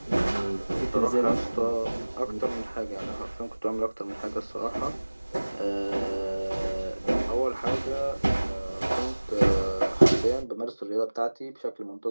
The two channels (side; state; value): both; inverted; correlation -1.00